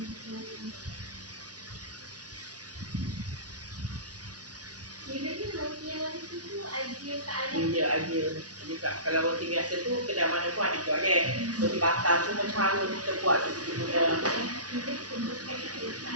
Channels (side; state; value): left; late; 0.68 ms